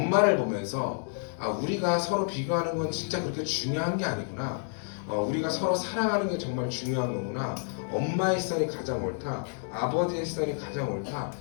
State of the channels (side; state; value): right; silent; 58 dB below the other